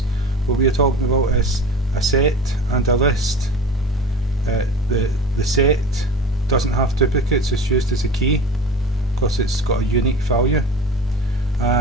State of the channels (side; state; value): both; normal; correlation 0.36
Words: What we are talking about is a set and a list. The set doesn't have duplicates, it's used as a key because it's got a unique value,